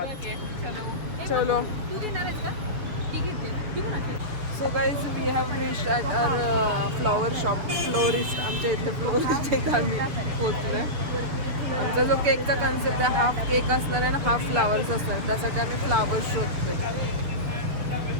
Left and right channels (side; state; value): left; late; 6.8 ms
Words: चलो. So guys we have reached at our flower shop. Florist, आमच्या इथले फ्लोरिस्ट एक आम्ही पोचलोय. आमचा जो केकचा कन्सेप्ट आहे, हाफ केक असणार आहे आणि हाफ फ्लावर्स असणार. त्यासाठी आम्ही फ्लावर्स शोधतोय.